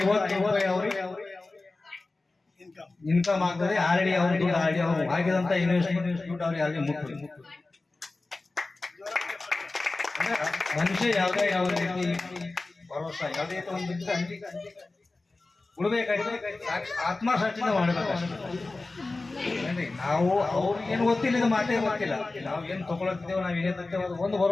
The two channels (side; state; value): right; quieter; 3.3 dB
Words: ರೂಪಾಯಿ ಅವ್ರಿಗೆ ಇನ್ಕಮ್ ಆಗ್ತದೆ. ಆಲ್ರೆಡಿ ಅವ್ರ ದುಡ್ಡು ಆಲ್ರೆಡಿ ಅವ್ರು ಹಾಕಿದಂತ ಇನ್ವೆಸ್ಟ್ಮೆಂಟ್ ದುಡ್ಡು ಅವ್ರಿಗೆ ಆಲ್ರೆಡಿ ಮುಟ್ಟಿ ಮನುಷ್ಯ ಯಾವುದೇ ರೀತಿ ಭರೋಸಾ ಯಾವುದೇ ಒಂದು ಉಳ್ಬೇಕಾದ್ರೆ ಆತ್ಮಸಾಕ್ಷಿಯಿಂದ ಮಾಡಬೇಕಷ್ಟೇ. ನಾವು ಅವ್ರಿಗೇನು ಗೊತ್ತಿಲ್ಲ, ಇದು ಮಾತೇ ಗೊತ್ತಿಲ್ಲ. ನಾವು ಏನು ತಗೊಳತ್ತಿದ್ದೇವೆ, ನಾವು ಏನೇ ತರ್ತೇವೆ ಅದು ಒಂದು